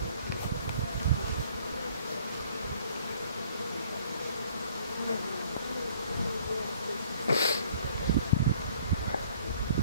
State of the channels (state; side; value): inverted; both; correlation -0.59